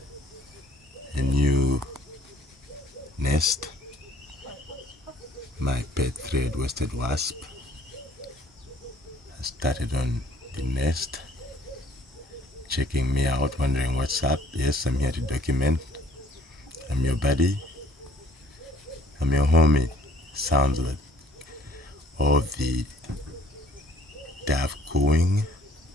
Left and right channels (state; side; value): normal; both; correlation 0.60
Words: a new nest. My pet thread-waisted wasp has started on the nest, checking me out, wondering what's up. Yes, I'm here to document. I'm your buddy. I'm your homie. Sounds like all the dove cooing